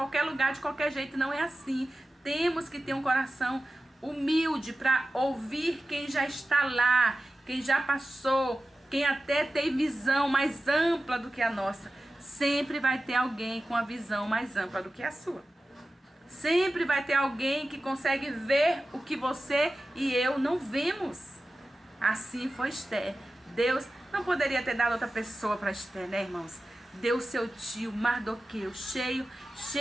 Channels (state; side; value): normal; both; correlation 0.94